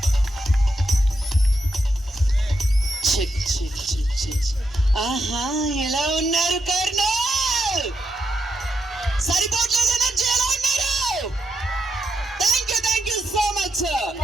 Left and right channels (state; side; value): normal; both; correlation 0.83